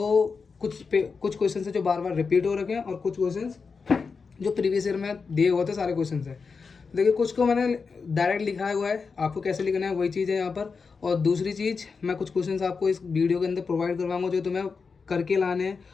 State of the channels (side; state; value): right; quieter; 5.0 dB